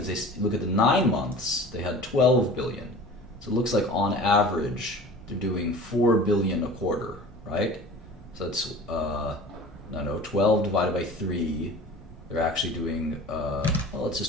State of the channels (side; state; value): both; normal; correlation 0.40